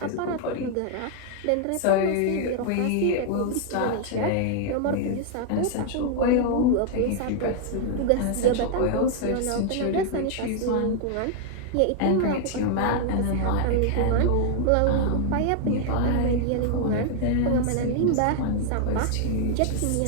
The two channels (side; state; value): both; different; correlation 0.00